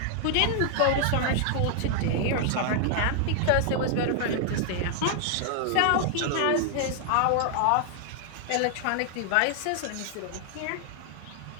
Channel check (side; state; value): both; different; correlation 0.00